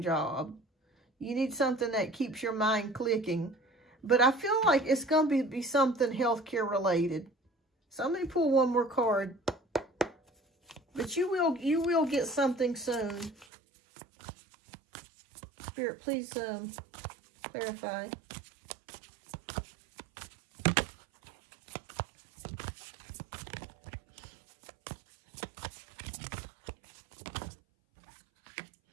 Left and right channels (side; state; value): left; drops out; at 13.5 s